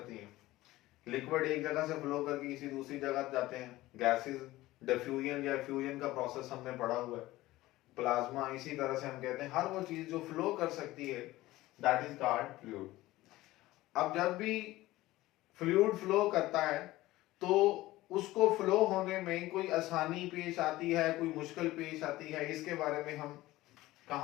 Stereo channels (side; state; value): right; quieter; 17.5 dB